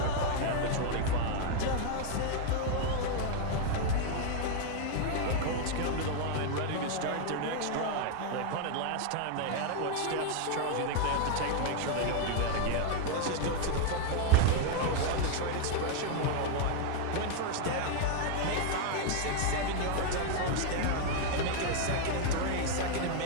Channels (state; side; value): different; both; correlation 0.00